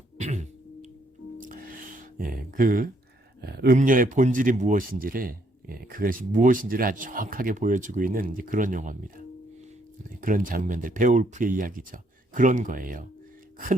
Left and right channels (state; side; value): normal; both; correlation 0.70